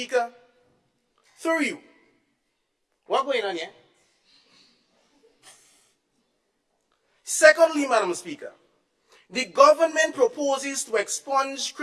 through you, what's going on here? Secondly, Madam Speaker, The government proposes to expunge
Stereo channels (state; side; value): identical; both; correlation 1.00